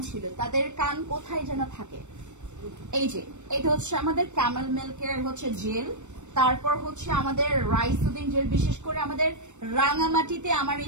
ছিল, তাদের কান কোথায় যেন থাকে। এই যে এটা হচ্ছে আমাদের ক্যামেল মিল্কের হচ্ছে জেল, তারপর হচ্ছে আমাদের রাইস সুদিং জেল। বিশেষ করে আমাদের রাঙামাটিতে আমার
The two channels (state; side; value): late; left; 0.84 ms